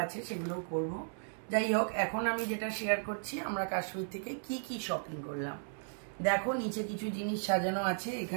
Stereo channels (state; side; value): silent; left; 54 dB below the other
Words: আছে, সেগুলো করব। যাই হোক, এখন আমি যেটা শেয়ার করছি আমরা কাশ্মীর থেকে কি কি শপিং করলাম। দেখো, নিচে কিছু জিনিস সাজানো আছে।